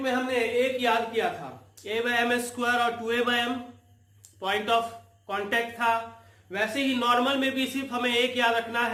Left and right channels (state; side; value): identical; both; correlation 1.00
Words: में हमने एक याद किया था a बाय एम स्क्वायर और 2a by m point of contact था, वैसे ही नॉर्मल में भी सिर्फ हमें एक याद रखना